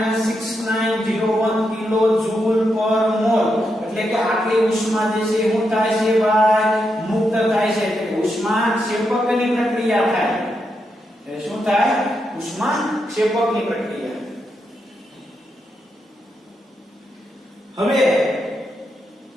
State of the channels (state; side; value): normal; both; correlation 0.83